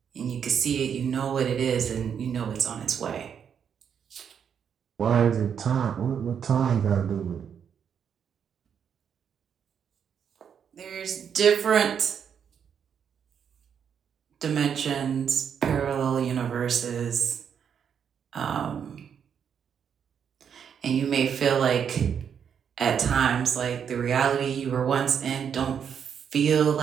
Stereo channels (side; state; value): left; quieter; 7.7 dB